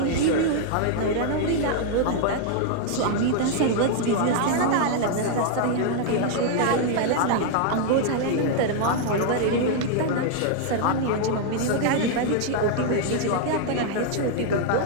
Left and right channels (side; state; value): both; different; correlation 0.00